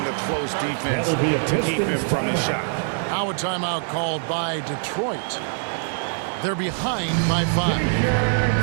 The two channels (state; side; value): silent; left; 60 dB below the other